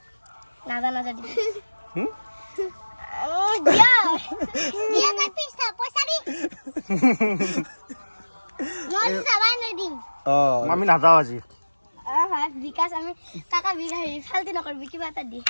না দি ও দিয়া না পয়সা দি মই সবাই না দিম আমি না যাও আজি হ্যাঁ বিকাশ আমি টাকা বিঘাই ফালতি নকরবি কিবা এটা দি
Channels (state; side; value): inverted; both; correlation -1.00